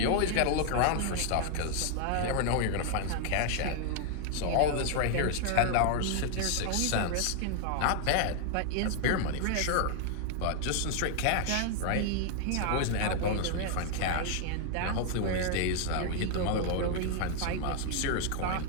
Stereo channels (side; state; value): both; different; correlation 0.00